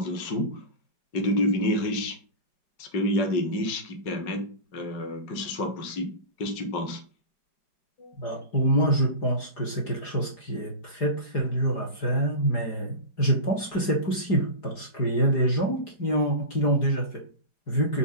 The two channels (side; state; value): right; late; 4.9 ms